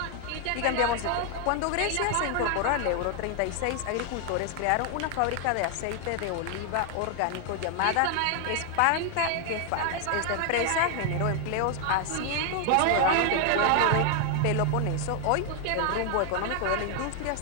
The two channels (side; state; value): both; different; correlation 0.00